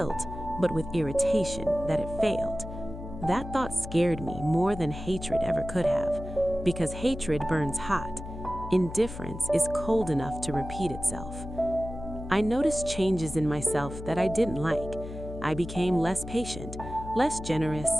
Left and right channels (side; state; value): left; noise; hum, 10 dB below the sound